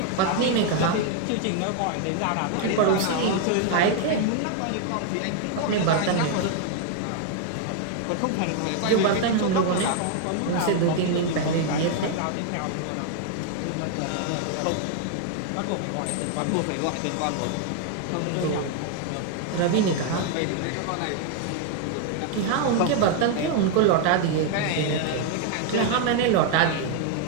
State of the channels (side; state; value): both; different; correlation 0.00